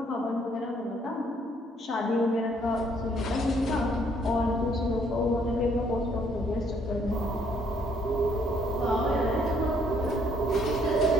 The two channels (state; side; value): normal; both; correlation 0.66